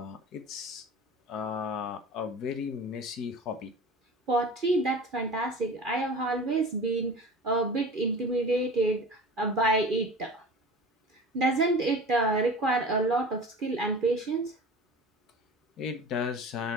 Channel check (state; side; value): normal; both; correlation 0.37